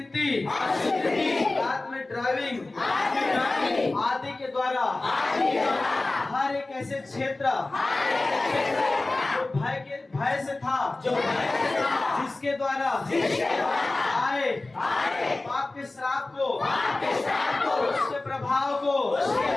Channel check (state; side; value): quieter; right; 3.1 dB